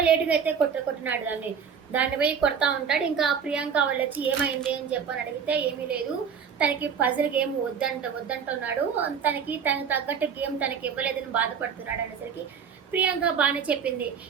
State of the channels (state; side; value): quieter; left; 6.9 dB